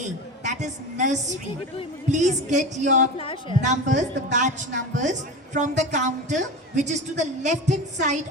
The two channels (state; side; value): normal; both; correlation 0.27